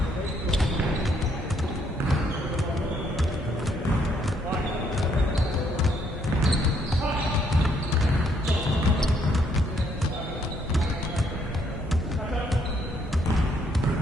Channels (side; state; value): both; normal; correlation 0.70